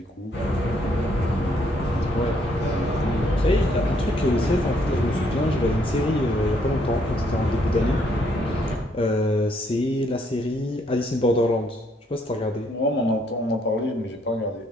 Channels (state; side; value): normal; both; correlation 0.70